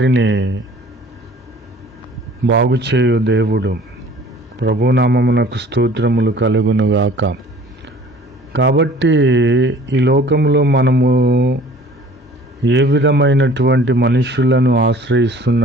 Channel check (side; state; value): both; normal; correlation 0.50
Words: బాగుచేయు దేవుడు. ప్రభునామమునకు స్తోత్రములు కలుగునుగాక. కాబట్టి ఈ లోకంలో మనము ఏ విధమైనటువంటి మనుషులను